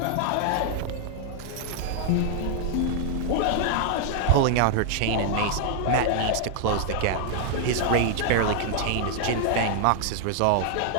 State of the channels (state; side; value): different; both; correlation 0.00